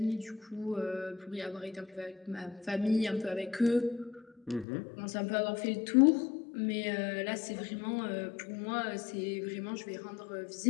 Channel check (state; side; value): drops out; right; at 4.7 s